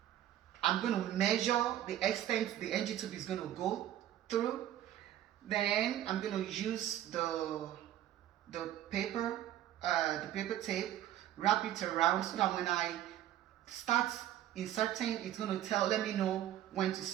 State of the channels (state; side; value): quieter; left; 12.3 dB